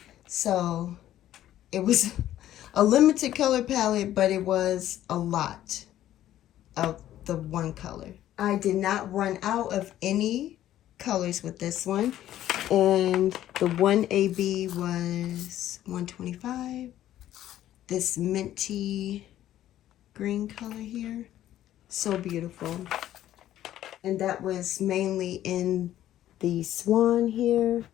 So it was a limited color palette, but it was a lot of the one color. I did not run out of any colors with this one, and the one AB was $125. This minty green color here, so beautiful. And that was mainly in the swan here,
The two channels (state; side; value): quieter; right; 12.7 dB